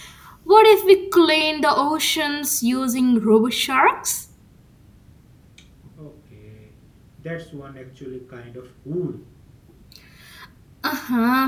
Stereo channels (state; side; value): identical; both; correlation 1.00